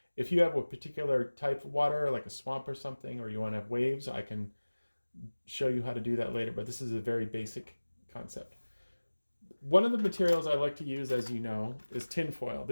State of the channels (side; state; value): both; inverted; correlation -1.00